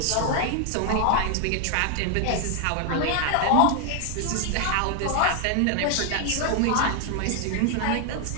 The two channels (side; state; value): both; different; correlation 0.00